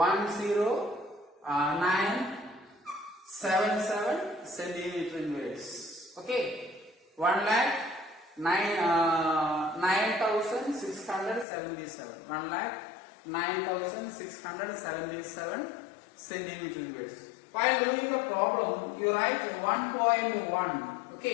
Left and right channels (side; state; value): right; drops out; at 11.5 s